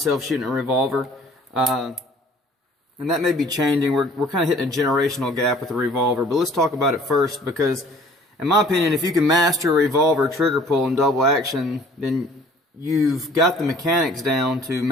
shooting a revolver. And that may be changing. We're kind of hitting a generational gap with the revolver. But let's talk about it first because, in my opinion, if you can master a revolver trigger pull and double action, then you've got the mechanics down to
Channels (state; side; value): normal; both; correlation 0.53